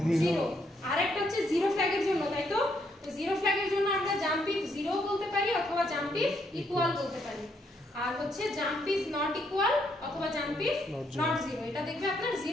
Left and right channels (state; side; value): normal; both; correlation 0.74